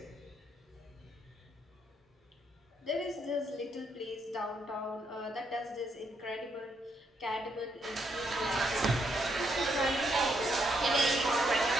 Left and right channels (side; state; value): both; normal; correlation 0.76